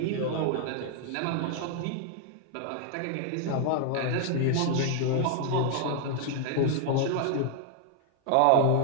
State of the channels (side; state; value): both; different; correlation 0.00